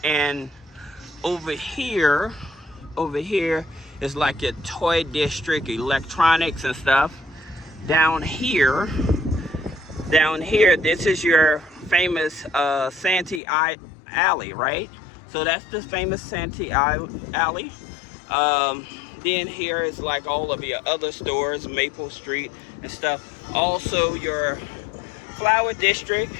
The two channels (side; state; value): right; drops out; at 13.4 s